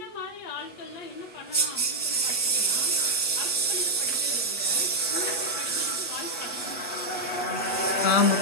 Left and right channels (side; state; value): right; late; 8.0 ms